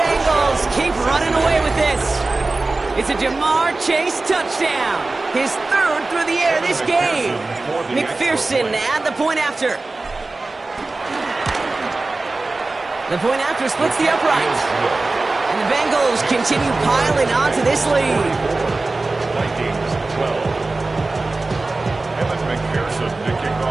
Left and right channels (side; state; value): left; quieter; 3.3 dB